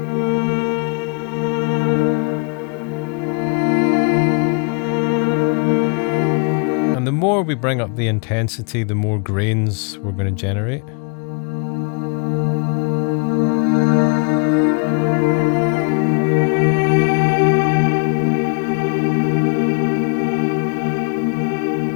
And the more we bring up the intensity, the more grains we're going to generate.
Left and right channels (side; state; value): right; quieter; 38.0 dB